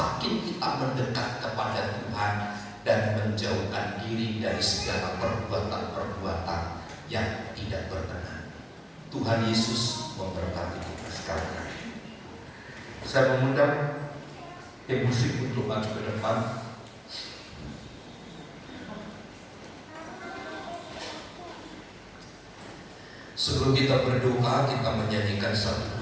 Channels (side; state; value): both; identical; correlation 1.00